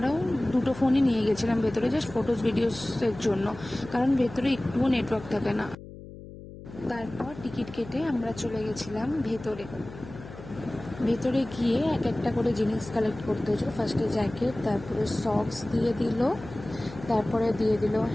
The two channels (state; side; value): noise; left; hum, 15 dB below the sound